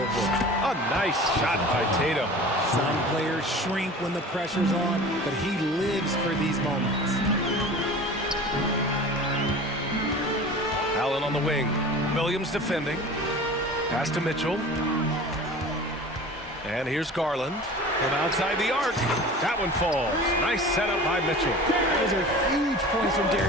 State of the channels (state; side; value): normal; both; correlation 0.39